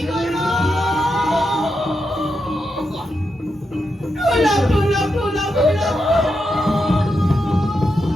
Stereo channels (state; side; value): normal; both; correlation 0.85